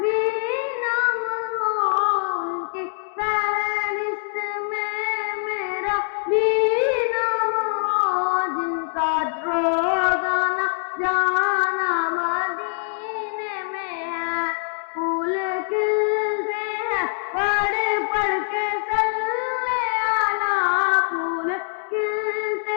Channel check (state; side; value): silent; right; 59 dB below the other